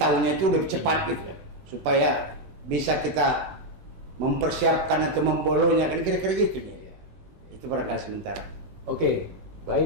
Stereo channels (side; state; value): left; late; 16 ms